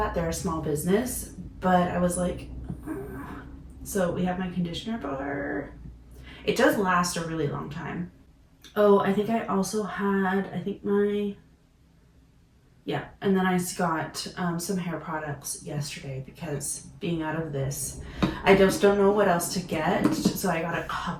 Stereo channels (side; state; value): both; identical; correlation 1.00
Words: They're a small business, but I was like, so we have my conditioner bar. It does last a really long time. Oh, I think I also had, and then I got some hair products yesterday because being out of this, I just don't know what else to get. So I got a